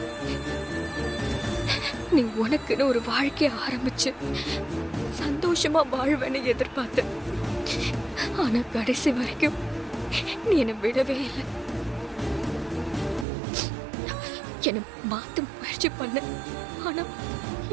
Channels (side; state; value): left; drops out; at 13.2 s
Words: நீ உனக்குன்னு ஒரு வாழ்க்கைய ஆரம்பிச்சு சந்தோஷமா வாழ்வேன்னு எதிர்பார்த்த. ஆனா கடைசி வரைக்கும் நீ என்னை விடவே இல்லை. என்னை மாத்த முயற்சி பண்ண, ஆனா